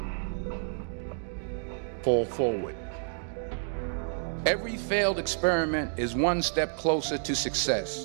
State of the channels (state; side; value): silent; left; digital silence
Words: Fall forward. Every failed experiment is one step closer to